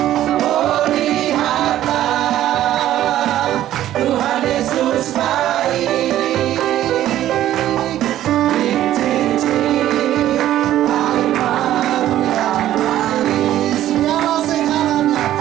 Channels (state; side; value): quieter; left; 12.9 dB